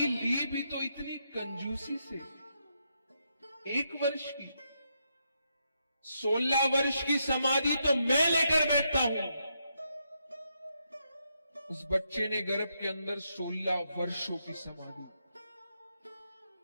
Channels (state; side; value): inverted; both; correlation -0.80